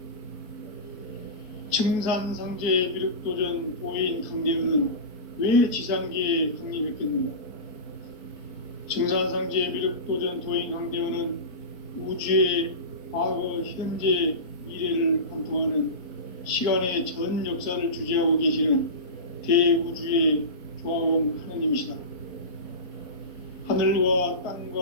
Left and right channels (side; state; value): right; late; 4.7 ms